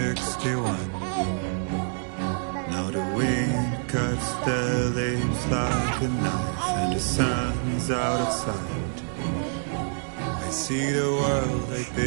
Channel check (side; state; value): left; silent; 60 dB below the other